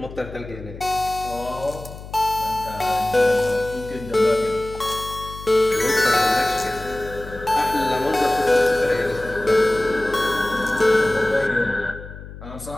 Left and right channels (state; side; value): noise; left; hum, 14 dB below the sound